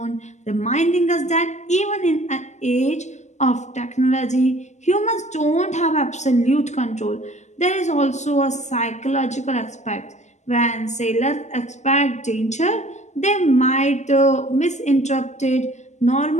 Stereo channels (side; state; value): right; late; 0.33 ms